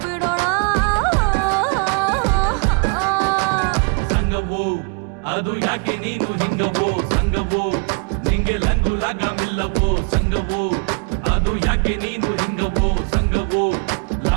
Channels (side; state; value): left; quieter; 36.9 dB